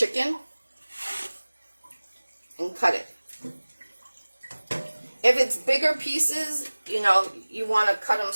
and cut it. If it's bigger pieces, you know, you want to cut them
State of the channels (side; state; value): both; inverted; correlation -1.00